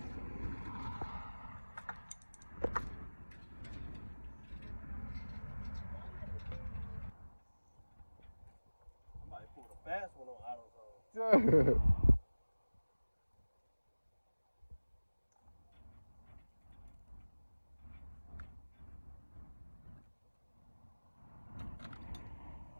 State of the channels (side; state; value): both; inverted; correlation -1.00